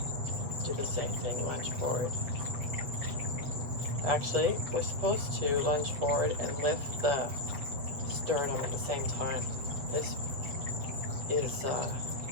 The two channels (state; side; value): late; left; 7.7 ms